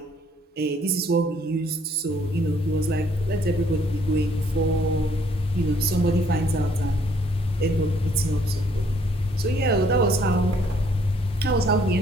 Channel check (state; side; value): normal; both; correlation 0.65